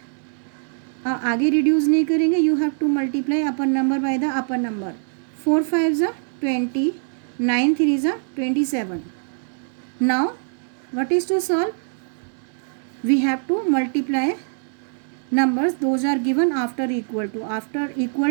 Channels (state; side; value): silent; left; digital silence